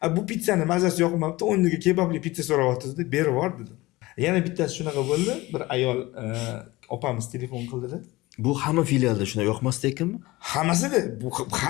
bu pizzani mazasi yoqmabdi, o'rniga kebabli pizza so'rayapti dedi, berib yubor dedi. Yana bittasi shunaqa bo'ldi, bir ayol opamiz telefon qildi-da. Bu hamma filialda shunday yoqmasdi ekanmi? Hammasida bu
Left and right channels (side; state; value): right; quieter; 20.2 dB